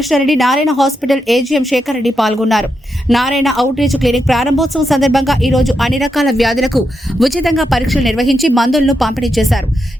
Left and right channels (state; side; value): normal; both; correlation 0.84